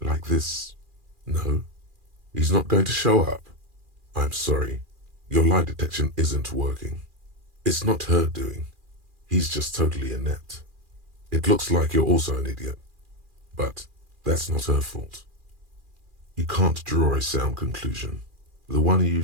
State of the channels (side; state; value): left; late; 2.4 ms